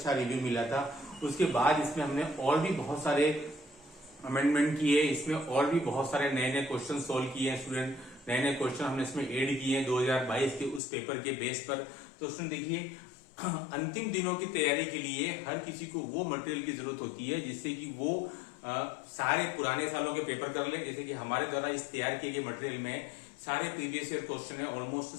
रिव्यू मिला था। उसके बाद इसमें हमने और भी बहुत सारे अमेंडमेंट किए, इसमें और भी बहुत सारे नए नए क्वेश्चन सोल्व किए हैं स्टूडेंट। नए नए क्वेश्चन हमने इसमें ऐड किए हैं 2022 के उस पेपर के बेस पर। तो स्टूडेंट देखिए, अंतिम दिनों की तैयारी के लिए हर किसी को वो मटेरियल की जरूरत होती है जिससे कि वो सारे पुराने सालों के पेपर कर ले। जैसे कि हमारे द्वारा इस तैयार किए गए मटेरियल में सारे प्रीवियस ईयर क्वेश्चन है, almost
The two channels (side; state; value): right; drops out; at 10.8 s